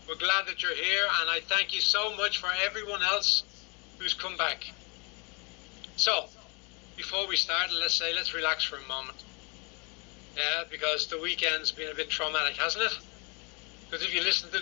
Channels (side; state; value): right; quieter; 31.8 dB